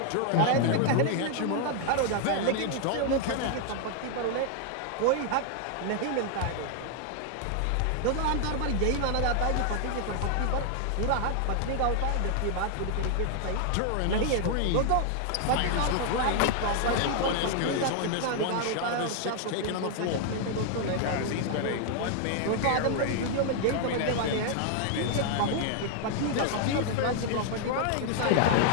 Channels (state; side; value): different; both; correlation 0.00